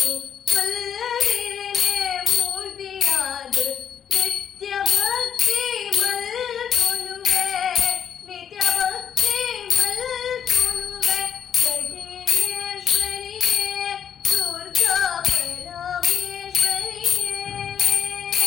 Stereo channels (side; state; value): right; quieter; 8.6 dB